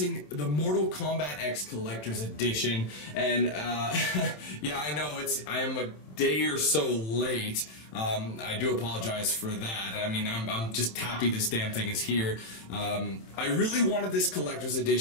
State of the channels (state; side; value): late; right; 27 ms